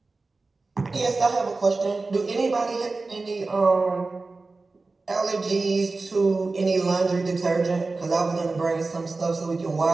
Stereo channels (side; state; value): left; quieter; 3.7 dB